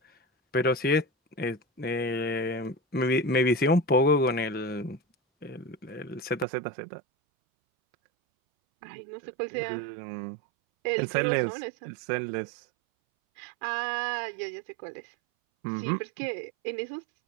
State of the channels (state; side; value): drops out; left; at 6.5 s